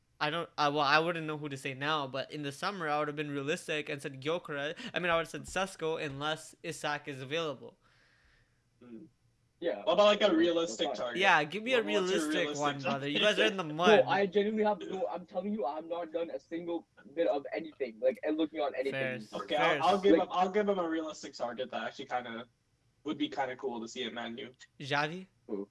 I wouldn't know who to say now, but in the summer I would have been realistic and said Gyökeres. I would have said Sesko unless Isak is available. Yeah. What about like a realistic target? Yeah, give me a realistic one, brother. You guys are in the mud. No, I genuinely have no. I'm telling you, I've not done a single bit of anything, and looking on anything. Fair. Okay, I'll give him a realistic target that actually would be kind of cool to see at Man U. Xavi? Who?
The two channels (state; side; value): identical; both; correlation 1.00